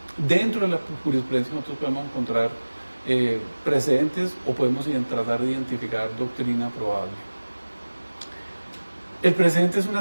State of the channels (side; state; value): both; inverted; correlation -1.00